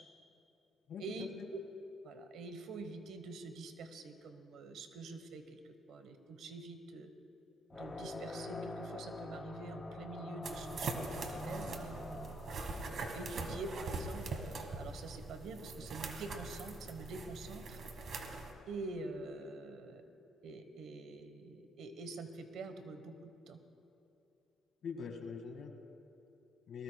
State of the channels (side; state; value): both; normal; correlation 0.70